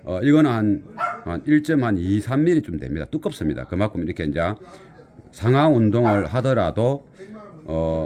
이거는 한 1.23mm 좀 됩니다. 두껍습니다. 그만큼 이렇게 이제 상하 운동을 하더라도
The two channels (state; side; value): identical; both; correlation 1.00